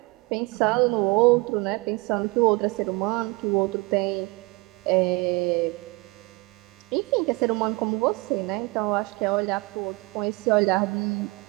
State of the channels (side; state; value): left; quieter; 25.7 dB